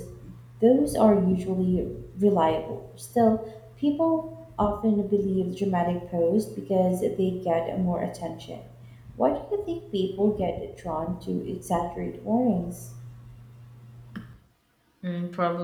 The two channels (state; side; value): identical; both; correlation 1.00